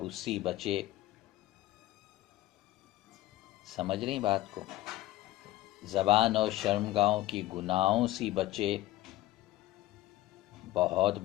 سے بچے۔ سمجھ رہی بات کو؟ زبان اور شرمگاہوں کی گناہوں سے بچے، بہت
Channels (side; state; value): right; quieter; 16.5 dB